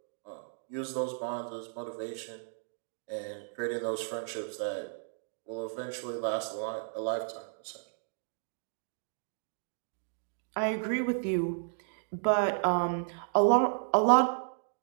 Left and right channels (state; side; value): silent; left; digital silence